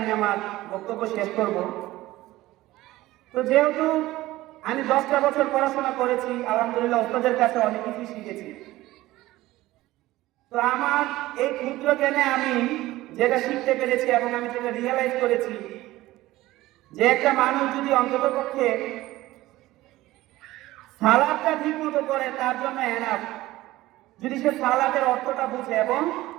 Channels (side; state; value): left; quieter; 17.2 dB